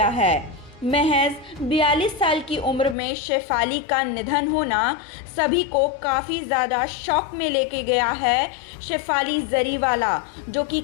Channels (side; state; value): right; drops out; at 3.0 s